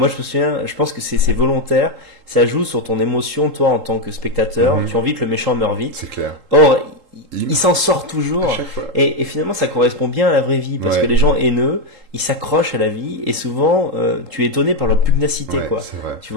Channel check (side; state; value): left; late; 3.8 ms